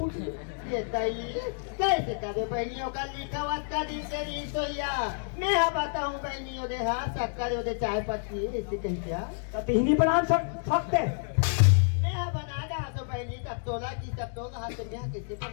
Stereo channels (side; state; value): right; silent; digital silence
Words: ये तई कैसे करे बहनियों का लिखा हुआ का दिन से नहीं सोया मैं हाँ बताऊं बहनियों दे हाँ शक्कर दे चाय पत्ती ऐसे कहीं क्या कतही बना सकते मैं हाँ बना रहा तो बहनी तब तोला की तब तोला हाथ में यहाँ कैसे